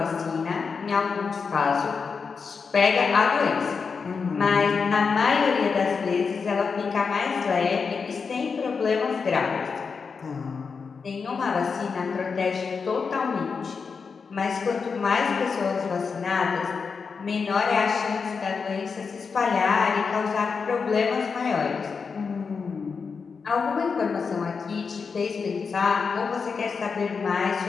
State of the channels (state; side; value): quieter; right; 5.4 dB